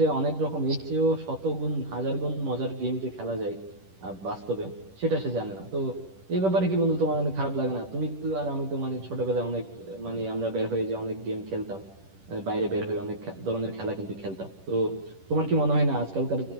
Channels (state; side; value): late; left; 10 ms